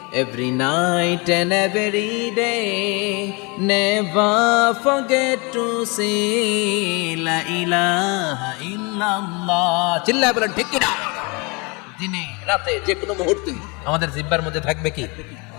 every night and every day, never forget to say la ilaha illallah. চিল্লায় বলেন ঠিক কিনা? দিনে রাতে যে কোনো মুহূর্তে আমাদের জিহ্বার মধ্যে থাকবে কি?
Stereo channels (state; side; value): quieter; right; 29.4 dB